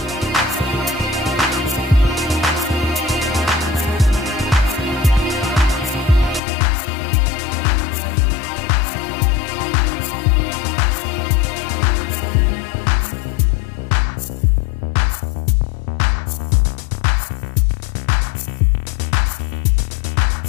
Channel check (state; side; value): drops out; right; at 6.4 s